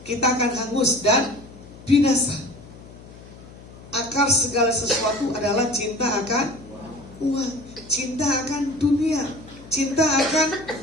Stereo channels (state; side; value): noise; left; hum, 19 dB below the sound